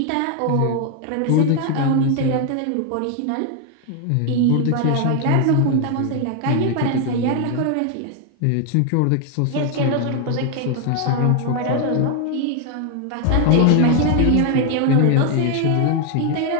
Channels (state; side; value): different; both; correlation 0.00